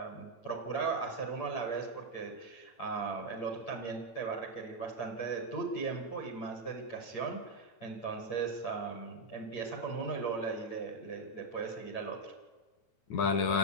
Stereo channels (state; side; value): late; right; 8.7 ms